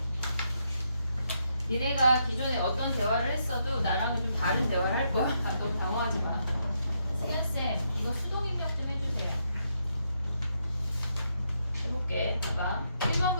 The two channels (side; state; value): both; inverted; correlation -0.78